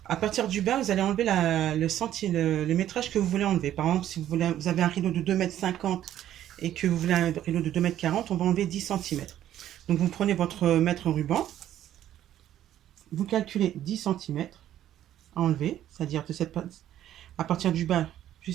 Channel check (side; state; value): left; quieter; 11.9 dB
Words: à partir du bas, vous allez enlever le métrage que vous voulez enlever. Par exemple, si vous avez un rideau de 2,50 m et que vous voulez un rideau de 2,40 m, on va enlever 10 cm. Donc vous prenez votre mètre ruban, vous calculez 10 cm à enlever, c'est-à-dire à partir du bas